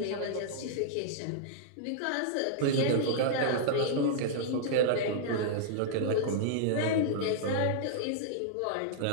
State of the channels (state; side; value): different; both; correlation -0.02